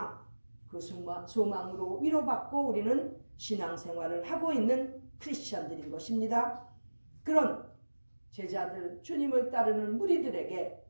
그 소망으로 위로받고 우리는 신앙생활을 하고 있는 크리스천들인 것입니다. 그런 제자들, 주님을 따르는 무리들에게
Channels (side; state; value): both; inverted; correlation -1.00